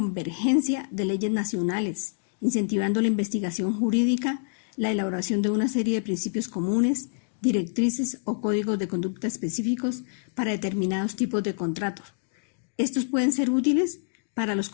de leyes nacionales, incentivando la investigación jurídica, la elaboración de una serie de principios comunes, directrices o códigos de conducta específicos para determinados tipos de contratos. Estos pueden ser útiles para los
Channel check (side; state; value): right; silent; digital silence